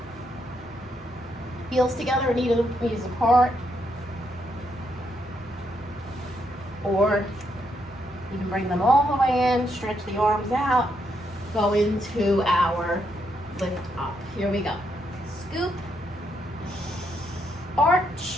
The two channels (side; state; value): both; normal; correlation 0.77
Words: Heels together, knees apart. Or you can bring them all the way in, stretch the arms out, go into our lift up. Here we go. Scoop,